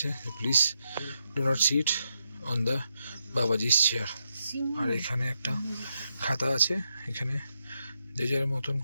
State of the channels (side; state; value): both; inverted; correlation -0.83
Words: please do not sit on the Babaji's chair. আর এখানে একটা খাতা আছে, এখানে যে যার মতন